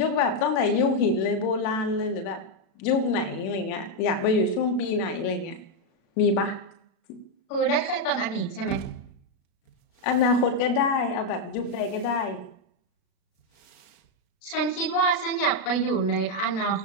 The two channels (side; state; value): right; late; 36 ms